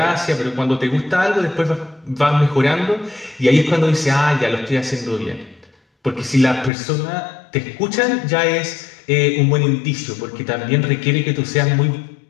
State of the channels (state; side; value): drops out; right; at 6.7 s